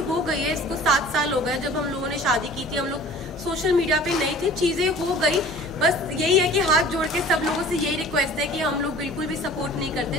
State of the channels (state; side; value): normal; both; correlation 0.45